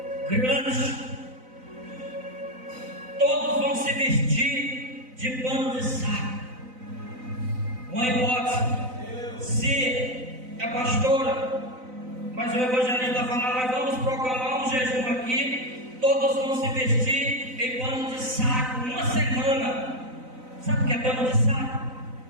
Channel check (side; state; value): left; late; 3.9 ms